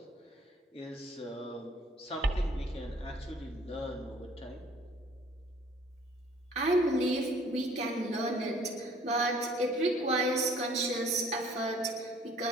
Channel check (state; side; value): normal; both; correlation 0.56